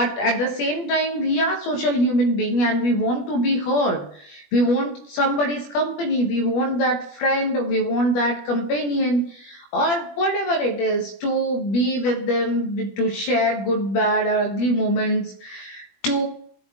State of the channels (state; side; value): late; right; 21 ms